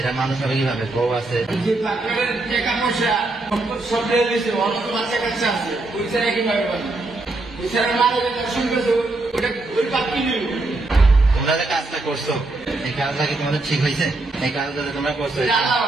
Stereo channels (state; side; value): quieter; left; 3.0 dB